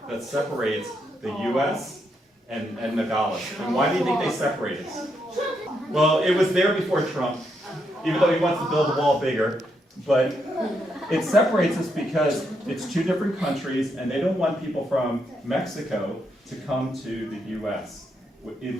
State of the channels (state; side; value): normal; both; correlation 0.79